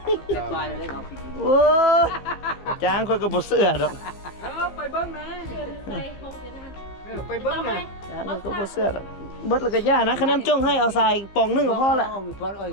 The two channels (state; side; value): late; right; 15 ms